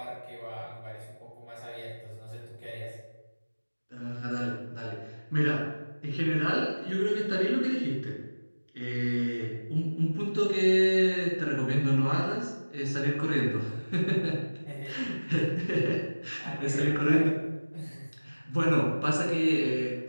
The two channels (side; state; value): both; inverted; correlation -1.00